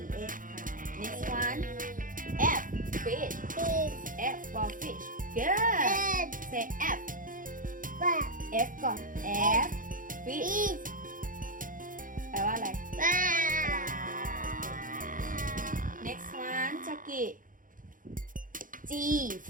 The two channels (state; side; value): late; left; 0.39 ms